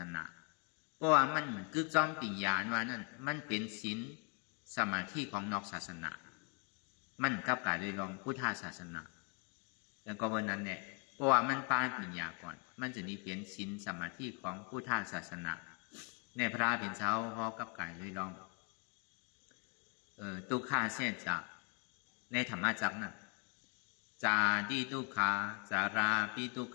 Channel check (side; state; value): right; quieter; 35.2 dB